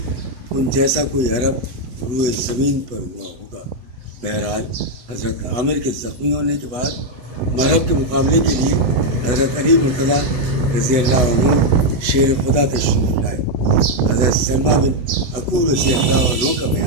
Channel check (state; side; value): late; left; 8.1 ms